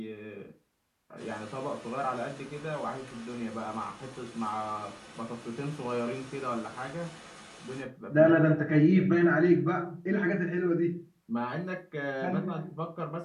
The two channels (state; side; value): identical; both; correlation 1.00